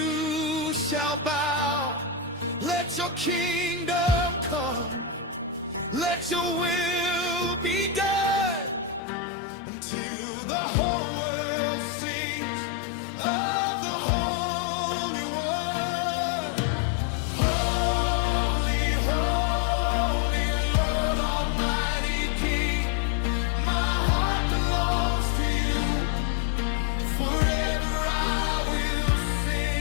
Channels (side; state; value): right; drops out; at 9.0 s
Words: shall bow. Let your kingdom come, let your will be done until the